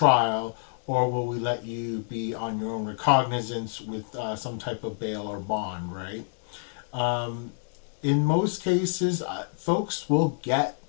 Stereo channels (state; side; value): silent; right; digital silence